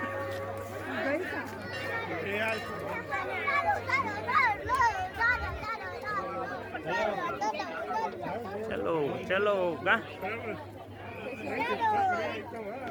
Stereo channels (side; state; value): both; identical; correlation 1.00